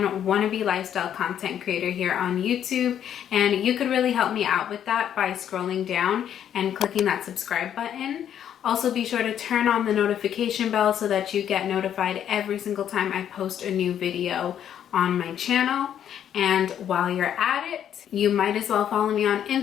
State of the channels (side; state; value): right; quieter; 9.7 dB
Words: wannabe lifestyle content creator here on YouTube. And you could really help me out with that by scrolling down and clicking that subscribe button. Also, be sure to turn on the notification bell so that you get notified every single time I post a new video on my channel. And while you're at it, you might as well follow me on